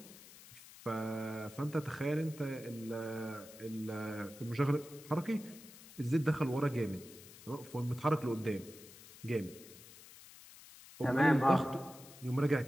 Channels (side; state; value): left; noise; hiss, 19 dB below the sound